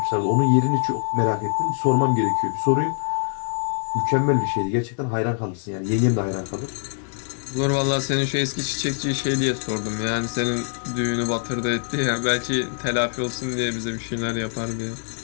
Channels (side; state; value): right; silent; digital silence